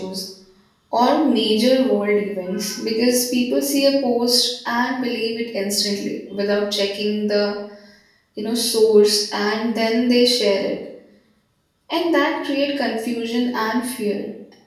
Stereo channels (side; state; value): both; identical; correlation 1.00